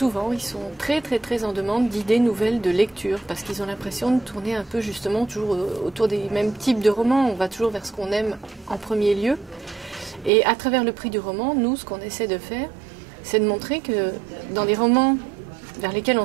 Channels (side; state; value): left; drops out; at 10.3 s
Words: ils sont très en demande d'idées nouvelles de lecture, parce qu'ils ont l'impression de tourner un peu justement toujours autour des mêmes types de romans. On va toujours vers ce qu'on aime en premier lieu. Et à travers le prix du roman, nous, ce qu'on essaie de faire, c'est de montrer que dans des romans vers lesquels on